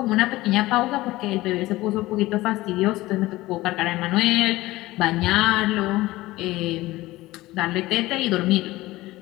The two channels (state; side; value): quieter; right; 18.3 dB